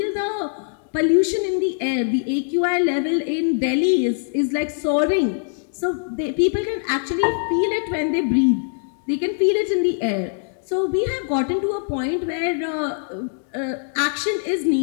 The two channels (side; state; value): right; silent; digital silence